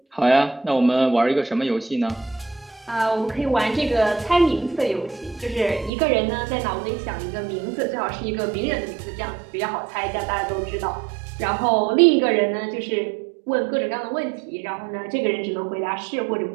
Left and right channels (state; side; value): drops out; left; at 5.9 s